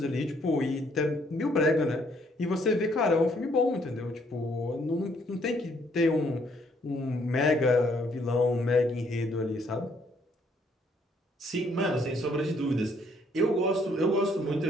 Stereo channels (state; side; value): normal; both; correlation 0.67